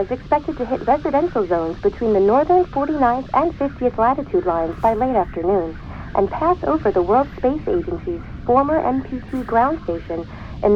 expected to hit residential zones between the northern 49th and 50th latitude lines by late afternoon and pass over the World Space Agency's former MPT ground station in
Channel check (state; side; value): identical; both; correlation 1.00